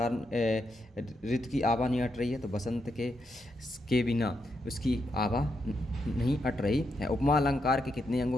ऋतु की आभा नहीं अट रही है? तो बसंत के बिना उसकी आभा नहीं अट रही है। उपमा अलंकार के कितने अंग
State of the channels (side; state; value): both; normal; correlation 0.82